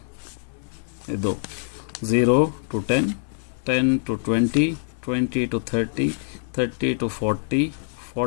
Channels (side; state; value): right; silent; digital silence